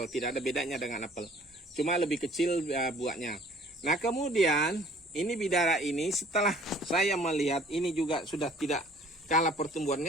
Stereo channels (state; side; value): normal; both; correlation 0.54